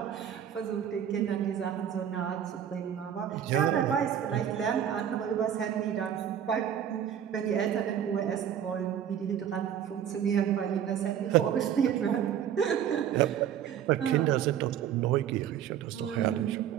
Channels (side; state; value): left; quieter; 9.5 dB